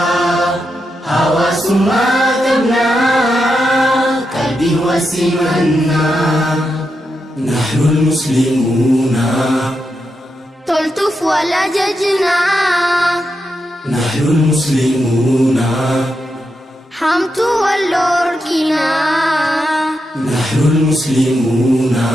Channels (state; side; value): normal; both; correlation 0.86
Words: حواس ما تبنى قلبي وسمنا نحن المسلمون تلطف ولا ججنا نحن المسلمون حمت واللوركنا نحن المسلمون